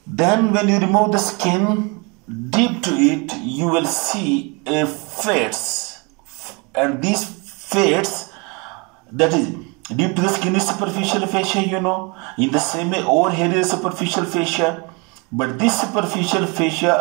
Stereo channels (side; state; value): left; quieter; 30.3 dB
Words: then when you remove the skin deep to it, you will see a fascia, and these fascia, that is deep to the skin, is superficial fascia, you know. In the same way, over here is superficial fascia, but this superficial fascia